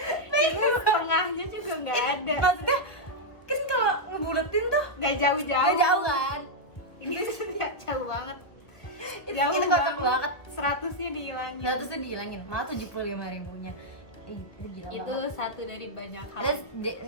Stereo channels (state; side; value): late; right; 1.2 ms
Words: Ini setengahnya juga nggak ada. Maksudnya kan kalau ngebuletin tuh Nggak jauh-jauh. nggak jauh kan. Ini nggak jauh banget. Itu kocak banget. 100-nya dihilangin. 100 tuh dihilangin, malah 75.000-nya. Itu gila Itu banget. satu dari banyak hal. Terus